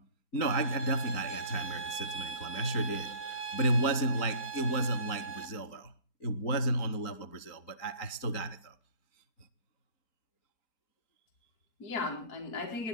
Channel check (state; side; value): late; right; 3.9 ms